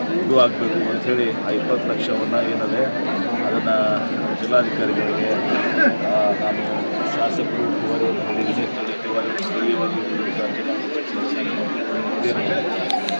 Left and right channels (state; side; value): inverted; both; correlation -1.00